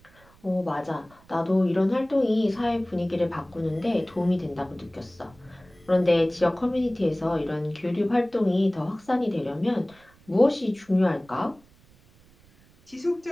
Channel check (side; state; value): right; noise; rumble, 28 dB below the sound